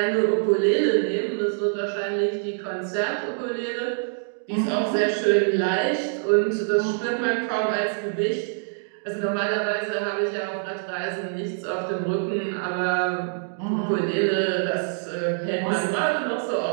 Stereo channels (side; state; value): left; silent; digital silence